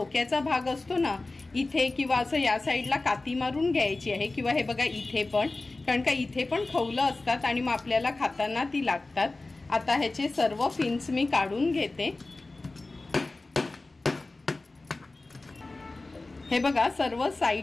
भाग असतो ना, इथे किंवा असं या साईडला काती मारून घ्यायची आहे किंवा हे बघा इथे पण, कारण का इथे पण खवलं असतात आणि मग आपल्याला खाताना ती लागतात। आता ह्याचे सर्व फिन्स मी काढून घेते। हे बघा सर्व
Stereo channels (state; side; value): quieter; right; 3.2 dB